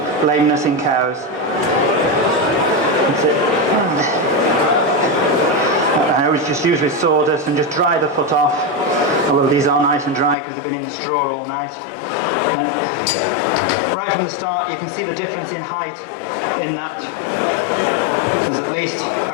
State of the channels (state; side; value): drops out; right; at 10.4 s